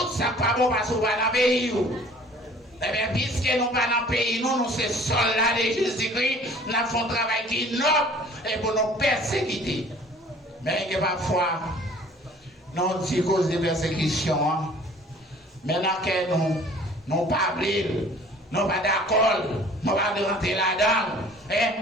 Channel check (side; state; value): both; normal; correlation 0.51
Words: ça pas bon parce que vous n'avez pas dans le pays. Eh bien, puisque nous pas dans le pays, nous sommes soldats de Jésus-Christ, nous faisons un travail qui est noble, et pour nous persécuter. Mais parfois, nous avons cause de persécution. Maintenant que nous non pas brûler, non pas d'accord, non pas de rentrer là-dedans.